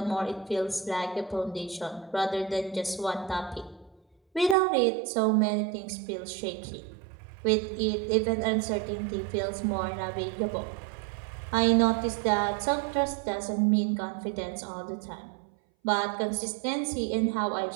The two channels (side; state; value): left; drops out; at 4.5 s